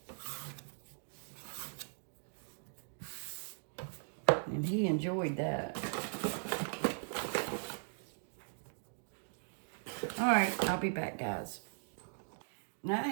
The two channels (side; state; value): left; silent; digital silence